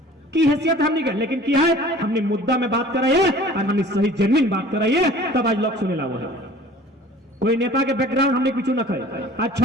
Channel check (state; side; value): normal; both; correlation 0.47